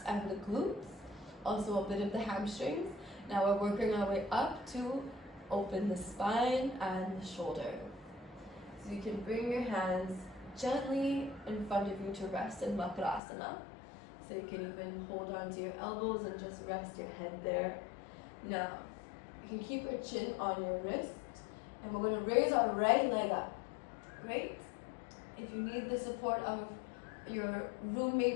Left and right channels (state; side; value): drops out; right; at 13.2 s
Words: and the glutes, also a bit of the hamstrings. Now we're working our way up to open the spine and the shoulder. So you can bring your hands gently in front of you to rest in Barigasana. So you can even hold on to your elbows and just rest your head there. Now, you can keep your chin on your wrist, and we're going to raise our right leg up. Great. If you need the support of your